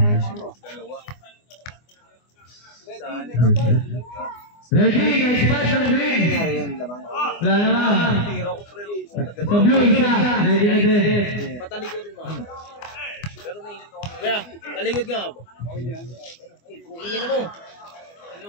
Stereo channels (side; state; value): right; late; 24 ms